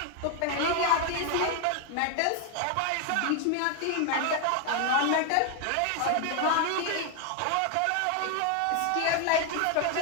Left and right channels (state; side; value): different; both; correlation 0.01